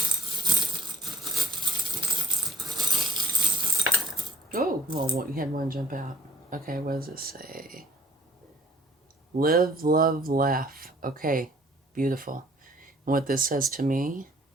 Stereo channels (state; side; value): normal; both; correlation 0.57